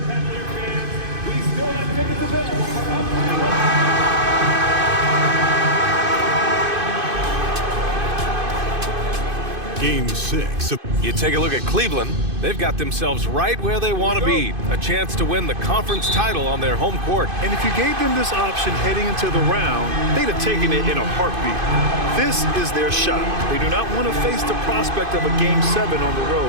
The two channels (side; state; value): left; late; 2.5 ms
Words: Cavalier fans, we still have tickets available for upcoming. Game 6. You take a look at Cleveland. They've got themselves right where they want to be. A chance to win the conference title on their home court. And if you gave them this option heading into the round, they'd have taken it in a heartbeat. This is their shot. They do not want to face the prospect of a Game 7 on the